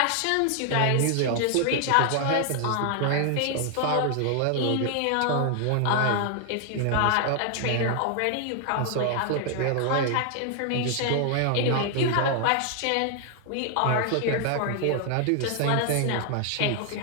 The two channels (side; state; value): both; different; correlation 0.00